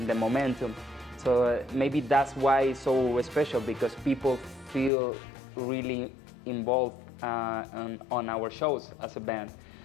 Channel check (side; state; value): right; drops out; at 4.9 s